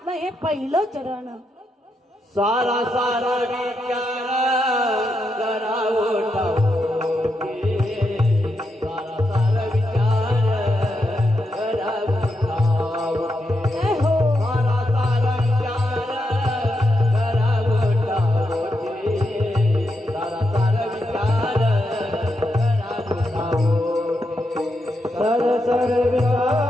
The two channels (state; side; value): normal; both; correlation 0.84